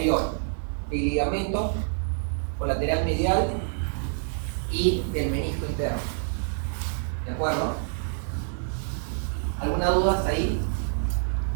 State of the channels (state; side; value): silent; left; 60 dB below the other